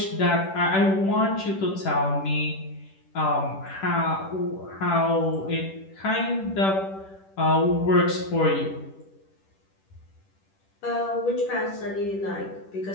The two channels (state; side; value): late; right; 10 ms